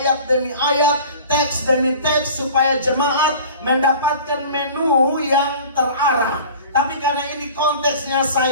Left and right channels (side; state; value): both; inverted; correlation -0.42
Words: demi ayat, teks demi teks, supaya jemaat mendapatkan menu yang terarah. Tapi karena ini konteksnya